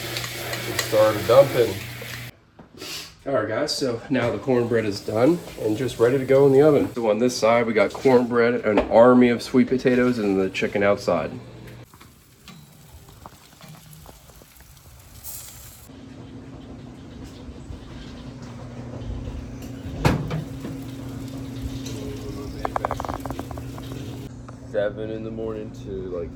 Started dumping. All right, guys, so now the cornbread is done and just ready to go in the oven. So on this side, we got cornbread, an army of sweet potatoes, and the chicken outside. Seven in the morning to like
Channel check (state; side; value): identical; both; correlation 1.00